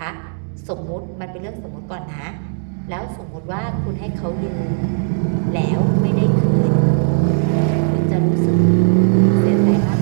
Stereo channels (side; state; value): left; silent; digital silence